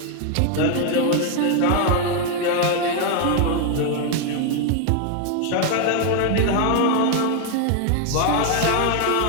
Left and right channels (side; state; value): both; different; correlation 0.01